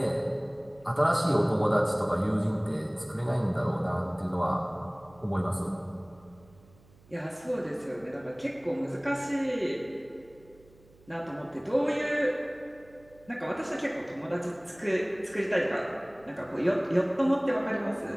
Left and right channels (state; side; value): noise; right; hum, 27 dB below the sound